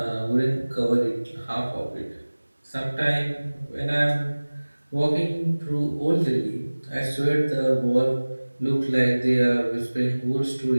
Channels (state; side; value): inverted; both; correlation -1.00